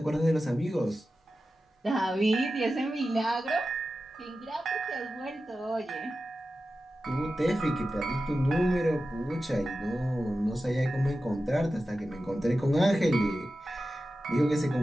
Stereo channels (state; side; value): normal; both; correlation 0.93